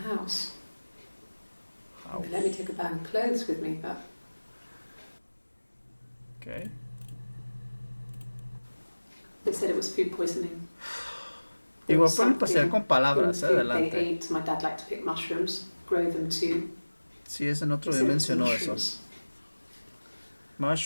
They let me take a bag of clothes with me, but Ok. they said it was food poisoning. Igual pueden pasear con palabras, in the food adelante. they ate. My dad liked to pick mushrooms, grow them too. Sí, ese en otro He día said it was mencionó eso. mushrooms.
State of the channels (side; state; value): both; inverted; correlation -1.00